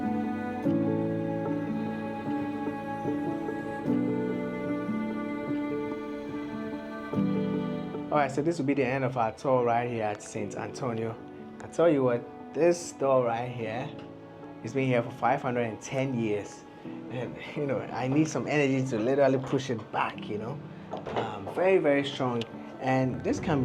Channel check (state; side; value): identical; both; correlation 1.00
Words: Alright, so this will be the end of our tour right here at St. Antonio. I tell you what, this store right here has been here for 510 years. And you know, I need some energy to literally push it back, you know. Very, very strong. And this can